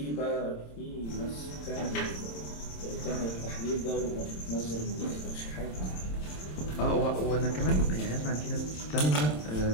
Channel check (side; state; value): right; late; 27 ms